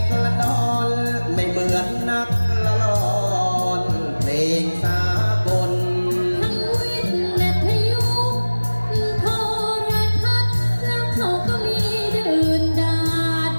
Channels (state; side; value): inverted; both; correlation -1.00